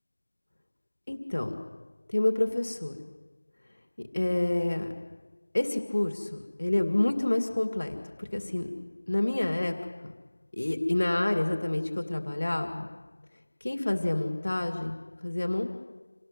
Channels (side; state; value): both; inverted; correlation -1.00